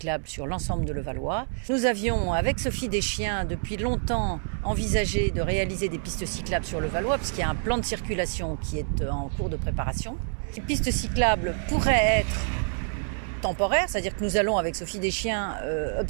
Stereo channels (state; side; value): silent; left; 59 dB below the other